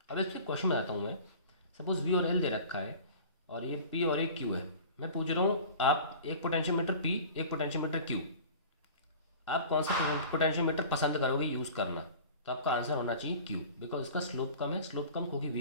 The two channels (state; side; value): inverted; both; correlation -0.40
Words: अब इससे क्वेश्चन बनाता हूँ मैं, सपोज V और L दे रखा है और ये P और एक Q है। मैं पूछ रहा हूँ आप एक पोटेंशियोमीटर P एक पोटेंशियोमीटर Q, आप कौन सा पोटेंशियोमीटर पसंद करोगे यूज़ करना, तो आपका आंसर होना चाहिए Q, बिकॉज उसका स्लोप कम है, स्लोप कम क्योंकि